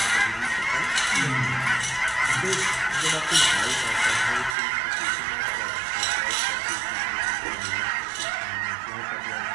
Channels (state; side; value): drops out; left; at 4.5 s